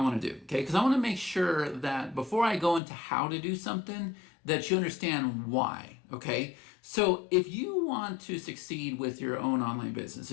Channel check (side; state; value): right; drops out; at 2.8 s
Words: want to do, okay? Because I want to make sure that before I go into how to do something, that you understand why, okay? So if you want to succeed with your own online business,